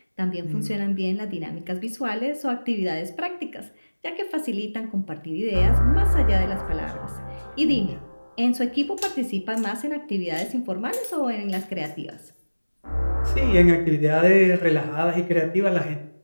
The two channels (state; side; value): inverted; both; correlation -1.00